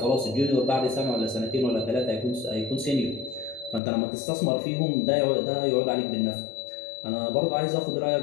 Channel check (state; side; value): drops out; right; at 3.8 s